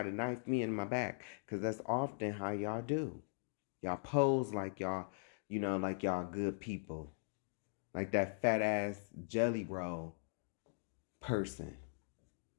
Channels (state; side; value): silent; right; digital silence